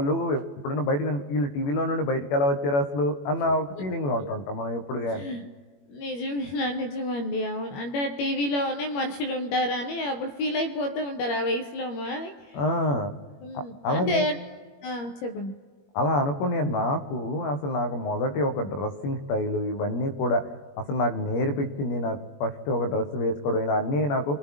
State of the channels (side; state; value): right; late; 21 ms